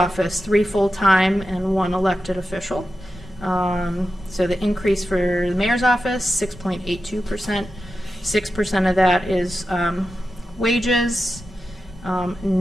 3 full-time and 1 elected official. So the increase for the mayor's office, 6.82%. 6% of that is wages,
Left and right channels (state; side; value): normal; both; correlation 0.91